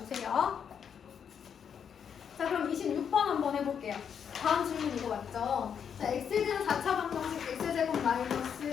자, 그럼 26번 한번 해볼게요. 다음 질문 이거 맞죠? 자, x에 대한 4차 방정식 x제곱 마이너스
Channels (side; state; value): right; quieter; 7.6 dB